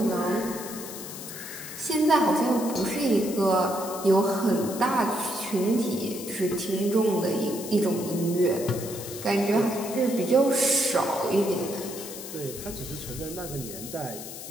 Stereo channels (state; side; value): noise; left; hiss, 11 dB below the sound